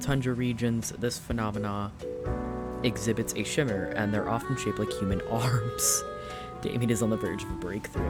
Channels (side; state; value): both; identical; correlation 1.00